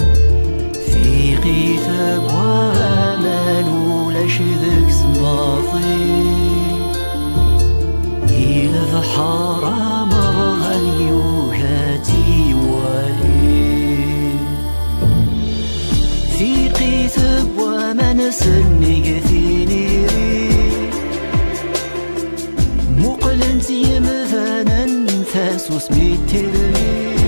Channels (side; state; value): both; inverted; correlation -1.00